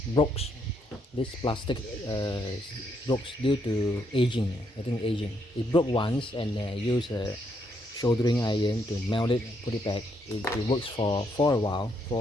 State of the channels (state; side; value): normal; both; correlation 0.75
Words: broke. This plastic broke due to aging. I think aging. It broke once, and use a soldering iron to melt it, put it back. It works for a while,